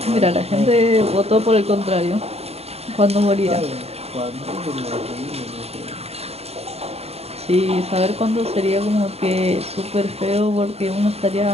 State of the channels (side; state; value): left; late; 0.30 ms